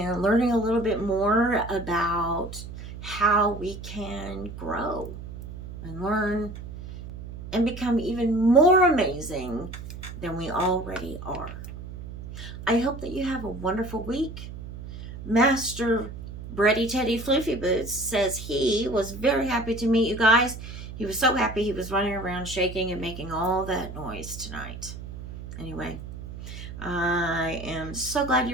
learning a little bit more about how we can grow and learn and become even more amazing than we already are. I hope that you have a wonderful week. Master Bready Teddy Floofy Boots says he was very happy to meet you guys. He was so happy he was running around shaking and making all that noise tonight. Anyway, I am so glad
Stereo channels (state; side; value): noise; right; hum, 11 dB below the sound